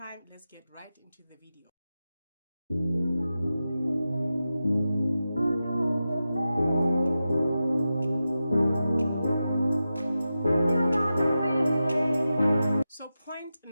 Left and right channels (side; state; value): both; inverted; correlation -0.92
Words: let's get right into the video. So point